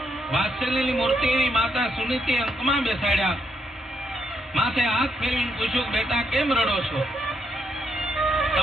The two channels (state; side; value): normal; both; correlation 0.77